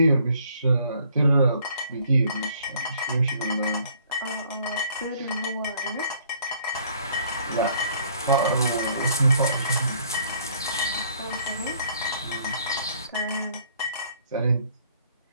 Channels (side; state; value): both; inverted; correlation -0.60